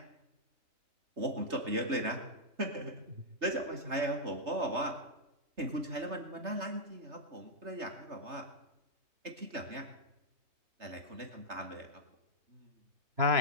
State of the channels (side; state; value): left; late; 3.3 ms